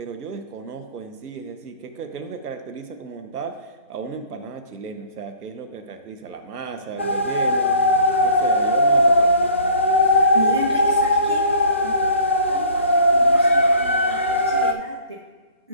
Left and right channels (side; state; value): both; inverted; correlation -0.49